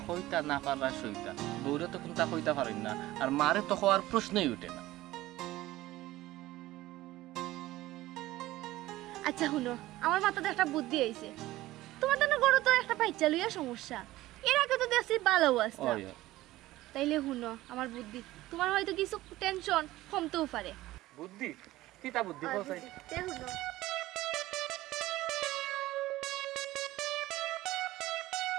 হইতা না পাররা সইতা বউরে তো কোনটা হইতা পারেন না আর মারে তো হওয়ার প্রশ্নই উঠে না আচ্ছা শুনো আমার মাথাতে একটা বুদ্ধি আইছে তোমার তো গরু তো একটা বাচ্চা লইয়া সমস্যা এর আগে তো দেখছি ভালো আছে তাইলে শুনো আমার বুদ্ধি তোমার হয়তো কিছু টেনশন কমতেও পারে বুদ্ধি কিতা বুদ্ধি বলছাই তে শুনো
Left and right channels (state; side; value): quieter; left; 16.8 dB